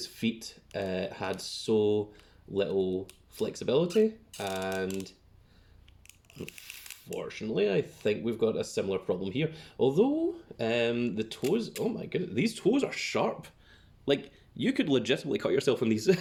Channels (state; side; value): identical; both; correlation 1.00